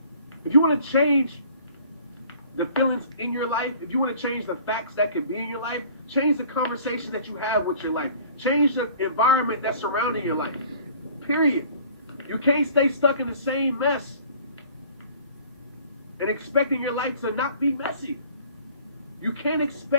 the feelings in your life, if you want to change the facts that could be in your life, change the conversation that you have with your life. Change the environment that's surrounding your life. Period. You can't stay stuck in the same mess and expecting your life to not be messy. You can't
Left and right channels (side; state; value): both; inverted; correlation -0.51